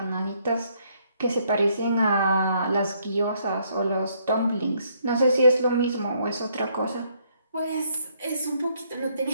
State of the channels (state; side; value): inverted; both; correlation -0.70